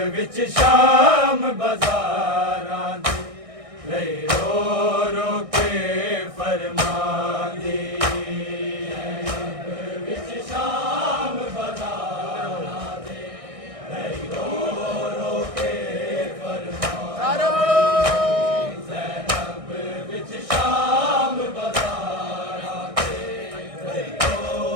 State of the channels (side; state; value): left; late; 1.6 ms